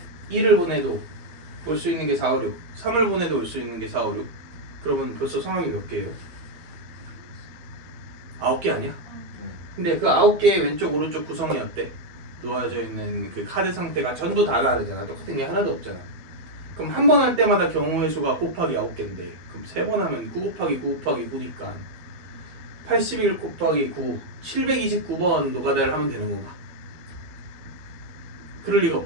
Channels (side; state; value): left; late; 12 ms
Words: 2를 보내도 올 수 있는 게 4, 5, 6 3을 보내도 올 수 있는 게 4, 5, 6 그러면 벌써 상황이 몇 개예요? 9개 아니야? 근데 그 9개의 왼쪽 오른쪽 구성이 어때? 놓아져 있는 그 카드 상태가 전부 다 다르잖아. 똑같은 게 하나도 없잖아. 그럼 한 번 할 때마다 경우의 수가 곱하기 9개인데 그럼 3번 하면 9 곱하기 9 곱하기 9니까 81 곱하기 9 729번 노가다를 하면 되는 건가? 그럴 리가